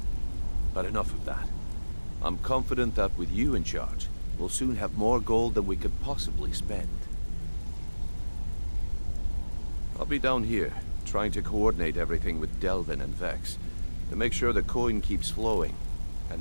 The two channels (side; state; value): both; inverted; correlation -1.00